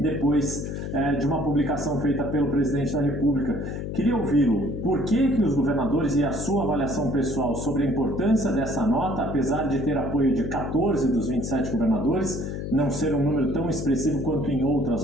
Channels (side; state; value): left; noise; hum, 5 dB below the sound